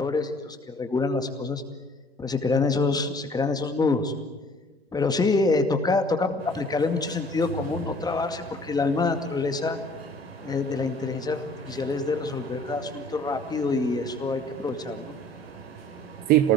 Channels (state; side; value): normal; both; correlation 0.53